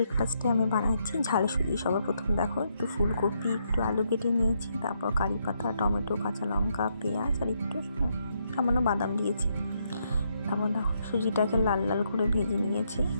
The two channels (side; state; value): both; inverted; correlation -0.76